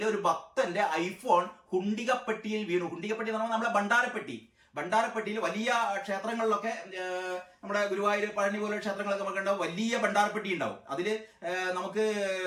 ഒരു ഭക്തന്റെ ഐഫോൺ ഹുണ്ടികപ്പെട്ടിയിൽ വീണു. ഹുണ്ടികപ്പെട്ടി എന്ന് പറഞ്ഞാൽ നമ്മളെ ഭണ്ഡാരപ്പെട്ടിയിൽ വലിയ ക്ഷേത്രങ്ങളിലൊക്കെ, നമ്മുടെ ഗുരുവായൂർ, പഴനി പോലെ ക്ഷേത്രങ്ങളൊക്കെ നമുക്ക് ഉണ്ടാവും, വലിയ ഭണ്ഡാരപ്പെട്ടി ഉണ്ടാവും. അതിൽ നമുക്ക്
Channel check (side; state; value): both; identical; correlation 1.00